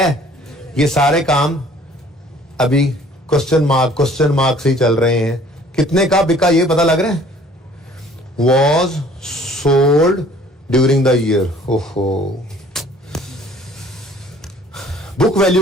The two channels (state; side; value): normal; both; correlation 0.54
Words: ये सारे काम अभी क्वेश्चन मार्क से ही चल रहे हैं। कितने का बिका ये पता लग रहा है, was sold during the year. ओहो, बुक